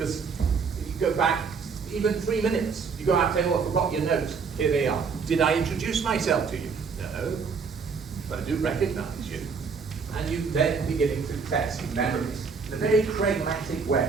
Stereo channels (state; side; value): quieter; left; 5.4 dB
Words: if you go back even 3 minutes, you go out and say, oh, I forgot your notes. Here they are. Did I introduce myself to you? No, but I do recognize you. And you then beginning to test memories in a very pragmatic way,